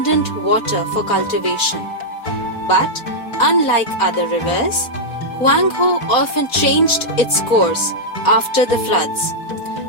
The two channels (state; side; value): late; right; 4.1 ms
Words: water for cultivation. But unlike other rivers, Huanghe often changed its course after the floods.